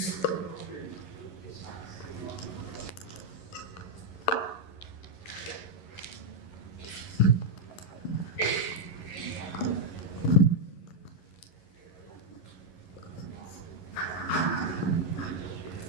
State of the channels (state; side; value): late; right; 11 ms